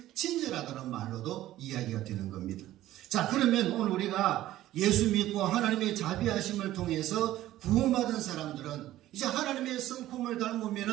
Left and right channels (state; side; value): quieter; left; 14.5 dB